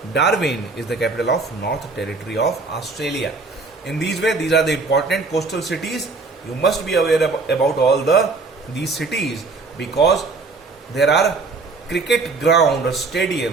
Darwin is the capital of North Territory of Australia. In these way, these are the important coastal cities. You must be aware about all these cities, because there are cricket ground or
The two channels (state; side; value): quieter; left; 4.0 dB